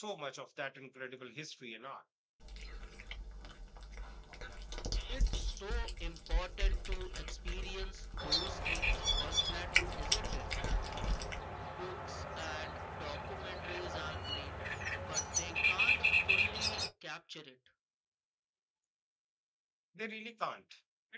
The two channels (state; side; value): identical; both; correlation 1.00